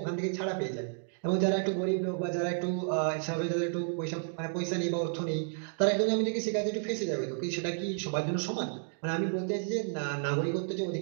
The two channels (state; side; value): silent; left; digital silence